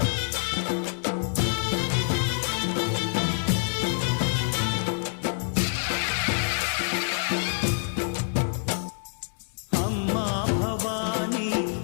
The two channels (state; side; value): silent; right; digital silence